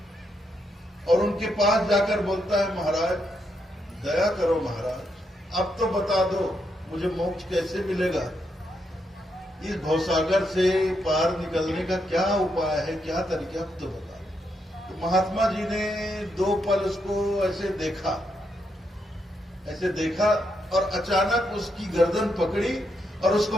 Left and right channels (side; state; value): both; normal; correlation 0.80